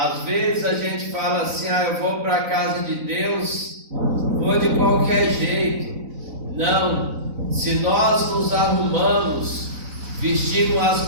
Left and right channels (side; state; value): left; late; 4.0 ms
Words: vezes a gente fala assim, eu vou para a casa de Deus, vou de qualquer jeito. Não, se nós nos arrumamos, vestimos as